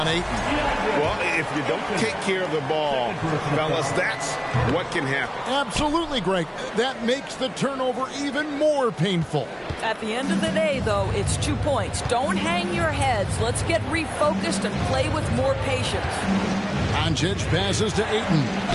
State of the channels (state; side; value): identical; both; correlation 1.00